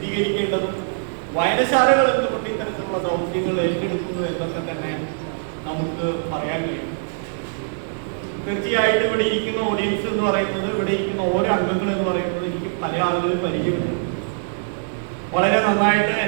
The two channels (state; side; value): silent; left; digital silence